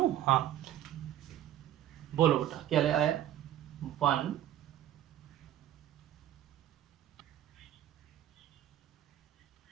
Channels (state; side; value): quieter; left; 12.3 dB